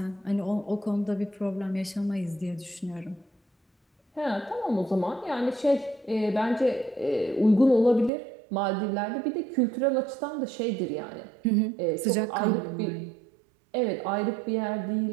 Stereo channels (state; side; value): drops out; left; at 8.1 s